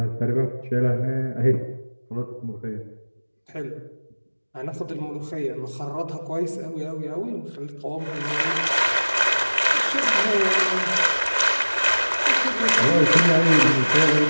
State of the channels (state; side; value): inverted; both; correlation -1.00